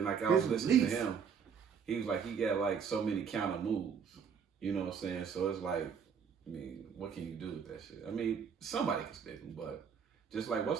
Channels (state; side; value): quieter; left; 6.8 dB